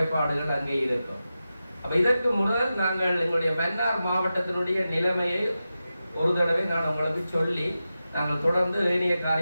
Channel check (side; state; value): both; inverted; correlation -0.92